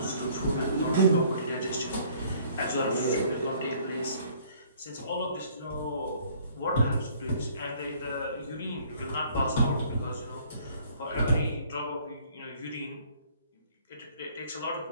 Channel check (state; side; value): inverted; both; correlation -0.58